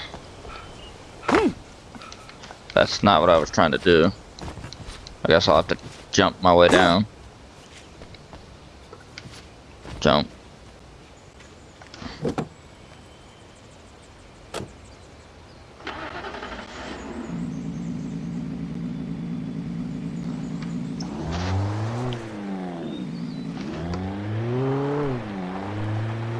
That's not what I was trying to do. I guess I'll have to jump my way down. Jump.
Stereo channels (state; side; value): identical; both; correlation 1.00